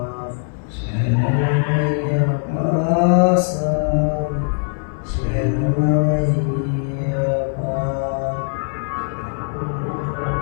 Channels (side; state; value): right; silent; digital silence